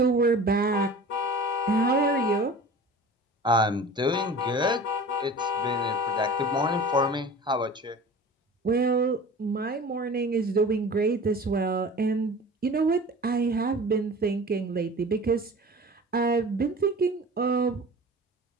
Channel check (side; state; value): both; normal; correlation 0.39